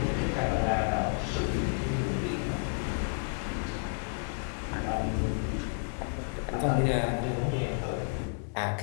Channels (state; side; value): silent; right; digital silence